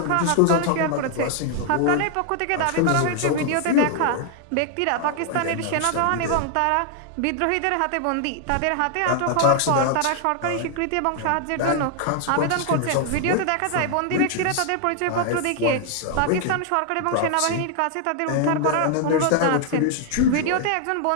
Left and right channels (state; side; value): different; both; correlation 0.00